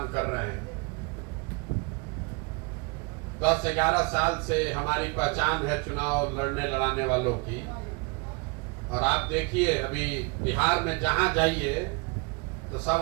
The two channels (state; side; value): quieter; left; 30.0 dB